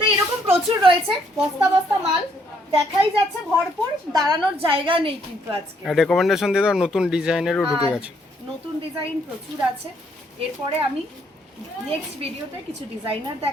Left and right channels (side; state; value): both; normal; correlation 0.70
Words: এরকম প্রচুর রয়েছে, বস্তা বস্তা মাল দেখাই যাচ্ছে ভরপুর, দাঁড়ানোর জায়গা নেই কিন্তু আজকে। রেকমেন্ডেশন দিয়ে দাও, নতুন ডিজাইনেরও ঢুকে আর গেছে। নতুন ডিজাইন প্রচুর আছে। এরপরে আমি নেক্সট ভিডিওতে কিছু ডিজাইনার